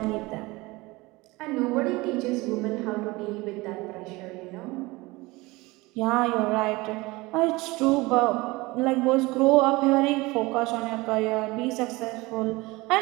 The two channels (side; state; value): left; quieter; 22.2 dB